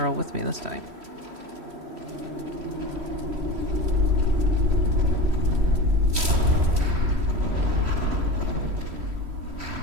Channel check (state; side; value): late; left; 3.1 ms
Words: all with me this time.